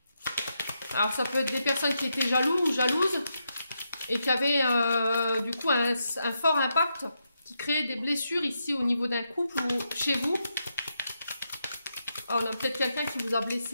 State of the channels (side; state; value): both; inverted; correlation -0.83